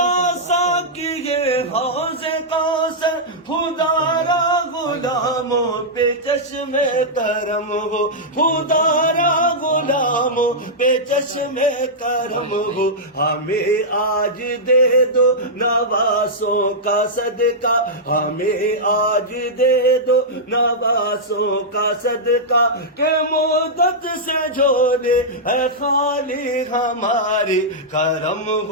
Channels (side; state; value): both; normal; correlation -0.09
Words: سا کیے حوض کوثر خدا را غلاموں پہ چشم کرم ہو خدا را غلاموں پہ چشم کرم ہو ہمیں آج دے دو نواسوں کا صدقہ ہمیں آج دے دو نواسوں کا صدقہ کہ مدت سے جھولے ہے خالی ہماری کرم